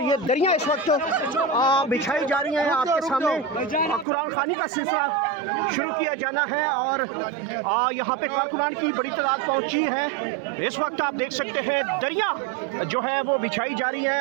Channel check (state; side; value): drops out; left; at 4.0 s